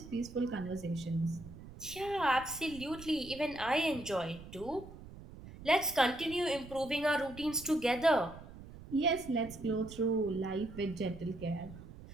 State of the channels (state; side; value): noise; right; rumble, 15 dB below the sound